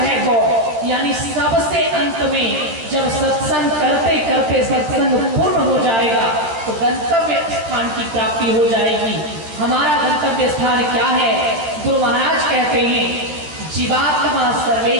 गौ, यानी सबसे अंत में जब सत्संग करते करते सत्संग पूर्ण हो जाएगा तो गंतव्य स्थान की प्राप्ति हो जाएगी। हमारा गंतव्य स्थान क्या है? गुरु महाराज कहते हैं जीवात्मा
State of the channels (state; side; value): late; left; 13 ms